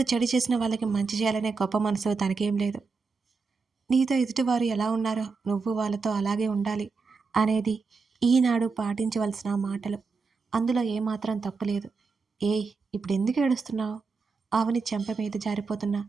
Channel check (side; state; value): left; quieter; 4.7 dB